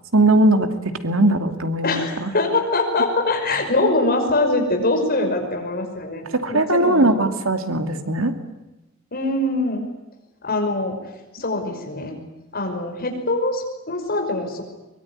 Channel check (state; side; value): normal; both; correlation 0.09